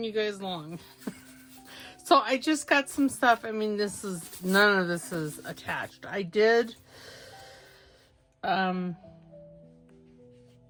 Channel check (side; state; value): both; identical; correlation 1.00